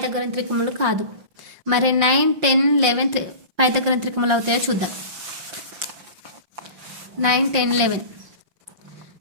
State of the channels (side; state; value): left; late; 5.6 ms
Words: త్రికములు కాదు. మరి 9, 10, 11 పైథాగోరస్ త్రికములు అవుతాయో చూద్దాం. 9, 10, 11.